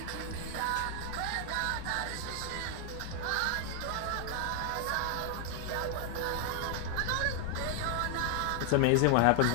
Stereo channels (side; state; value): both; different; correlation 0.00